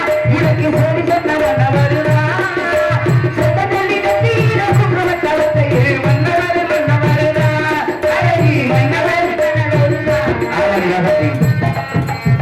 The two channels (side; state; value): both; identical; correlation 1.00